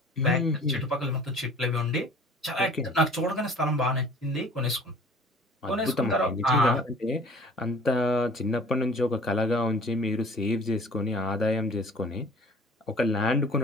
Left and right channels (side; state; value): both; normal; correlation 0.48